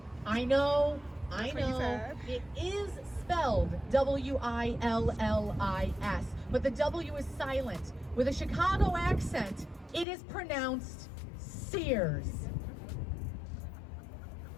I know, it is spelled W-I-L-L-I-S, but the W is silent. With a Chicago accent, it is pronounced Sears.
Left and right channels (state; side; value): drops out; right; at 10.1 s